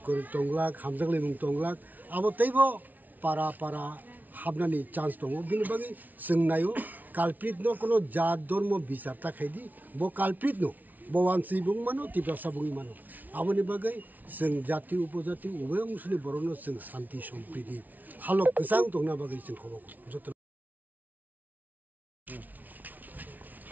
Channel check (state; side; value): late; left; 0.079 ms